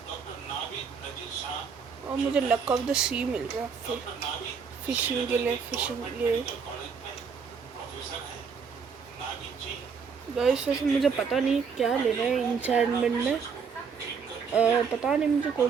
और मुझे लक ऑफ द सी मिल रहा है फिशिंग के लिए। गाइस वैसे मुझे पता नहीं क्या लेना है इंचार्टमेंट में, पता नहीं मुझे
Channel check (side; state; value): left; quieter; 6.0 dB